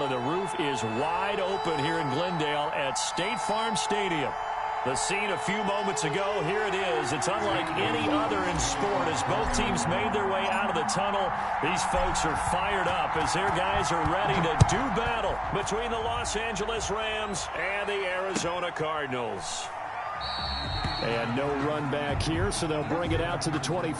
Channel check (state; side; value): identical; both; correlation 1.00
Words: and the roof is wide open here in Glendale at State Farm Stadium. The scene a few moments ago, here it is. It's unlike any other in sport as both teams made their way out of the tunnel. These folks are fired up as their guys are ready to do battle between the Los Angeles Rams and the Arizona Cardinals. And no run back here, so they'll bring it out to the